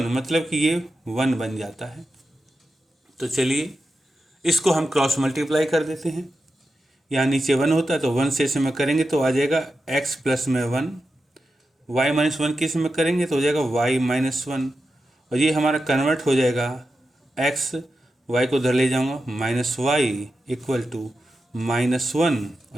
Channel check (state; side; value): normal; both; correlation 0.90